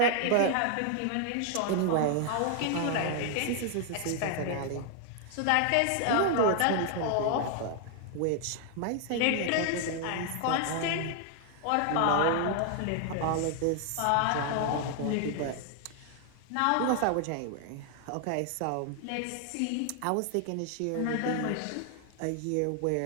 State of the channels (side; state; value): both; different; correlation 0.00